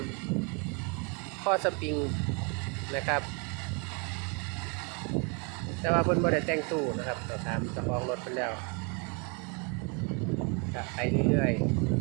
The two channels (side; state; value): left; quieter; 33.8 dB